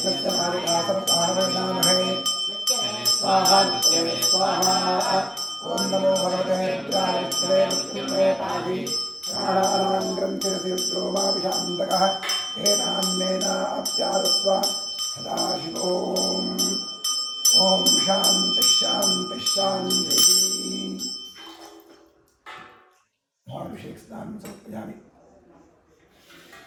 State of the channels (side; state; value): both; identical; correlation 1.00